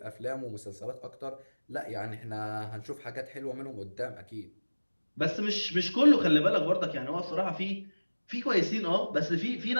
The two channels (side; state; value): both; inverted; correlation -1.00